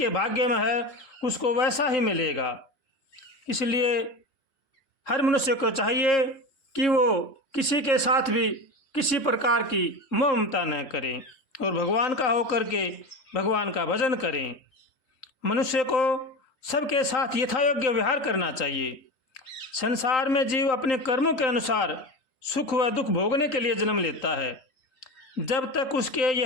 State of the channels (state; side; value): late; right; 3.9 ms